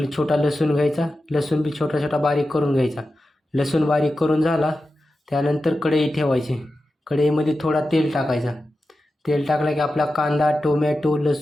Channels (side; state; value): both; normal; correlation 0.92